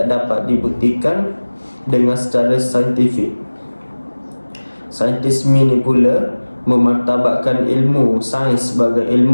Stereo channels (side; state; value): both; inverted; correlation -1.00